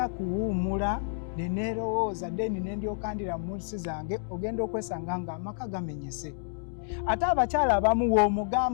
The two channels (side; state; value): right; silent; digital silence